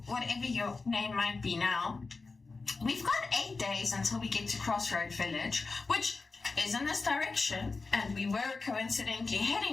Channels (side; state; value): right; quieter; 4.0 dB